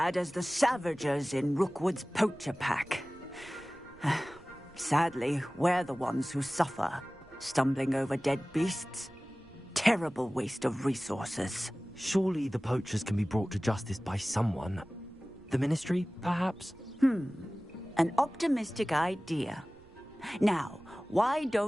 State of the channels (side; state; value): right; noise; rumble, 25 dB below the sound